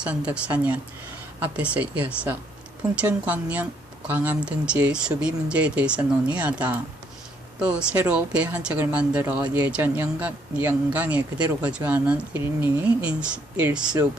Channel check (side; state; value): both; normal; correlation 0.69